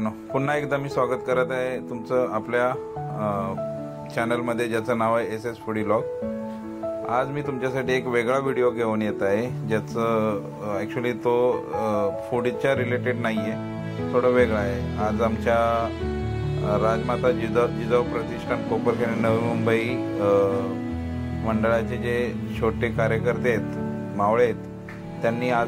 पुन्हा एकदा मी स्वागत करत आहे तुमचं आपल्या चॅनलमध्ये ज्याचं नाव आहे एस एस फूडी व्लॉग। आज मी तुमच्यासाठी एक वेगळा व्हिडिओ घेऊन येत आहे, ज्याचं ॲक्च्युली तो फूडच्या रिलेटेड नाही आहे, थोडं वेगळं आहे। आज आमच्या राजमाता जिजाऊ प्रतिष्ठान कोपरखैरणे नवी मुंबई मंडळाचे जे छोटे कार्यकर्ते आहेत, मावळे आहेत, त्यांनी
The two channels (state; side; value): identical; both; correlation 1.00